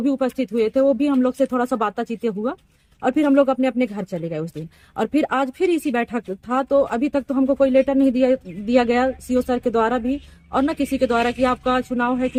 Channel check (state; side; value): identical; both; correlation 1.00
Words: भी उपस्थित हुए थे। वो भी हम लोग से थोड़ा सा बातचीत हुआ और फिर हम लोग अपने अपने घर चले गए उस दिन। और फिर आज फिर इसी बैठक था। तो अभी तक तो हमको कोई लेटर नहीं दिया गया सीओ सर के द्वारा भी और न किसी के द्वारा कि आपका चुनाव है